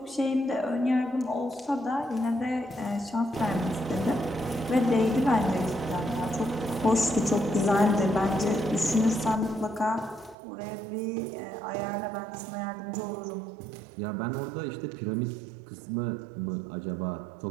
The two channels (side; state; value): left; drops out; at 10.4 s